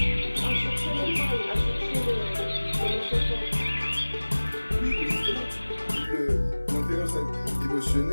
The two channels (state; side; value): inverted; both; correlation -1.00